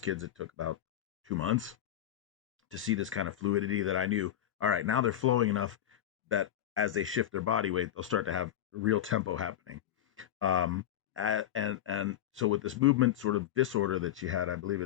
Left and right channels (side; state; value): right; quieter; 11.7 dB